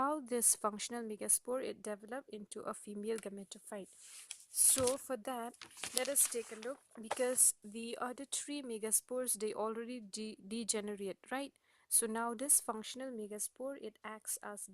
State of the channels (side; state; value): both; identical; correlation 1.00